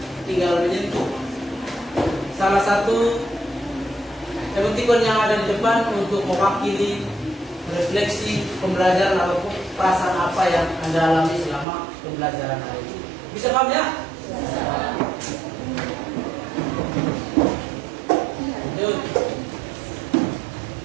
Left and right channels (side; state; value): left; drops out; at 11.7 s